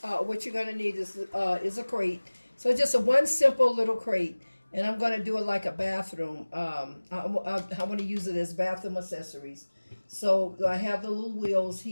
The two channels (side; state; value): both; inverted; correlation -1.00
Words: going to need is a crate. So just one simple little crate, and I'm going to do it like a bathroom. I want to use it as bathroom accessories. So I have the little wheels